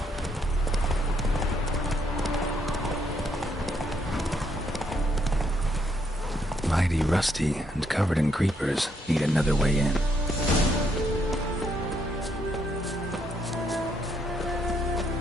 Mighty rusty and covered in creepers. Need another way in.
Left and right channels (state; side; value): normal; both; correlation 0.74